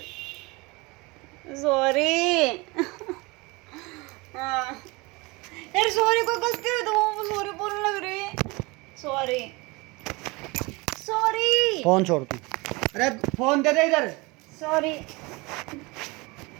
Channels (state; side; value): quieter; left; 25.1 dB